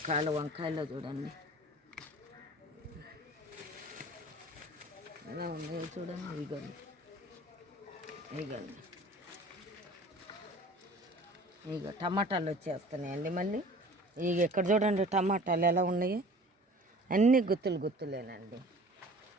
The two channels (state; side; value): normal; both; correlation 0.45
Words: వంకాయలు చూడండి ఎలా ఉన్నాయో చూడండి. ఇగోండి ఇక టమాటాలు వచ్చేస్తున్నాయండి మళ్ళీ. ఇక ఇక్కడ చూడండి టమాటాలు ఎలా ఉన్నాయో, అన్నీ గుత్తులు గుత్తులేనండి.